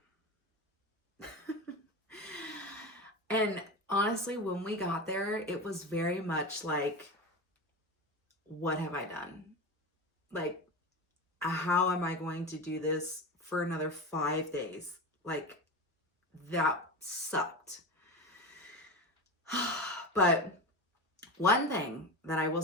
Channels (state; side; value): normal; both; correlation 0.24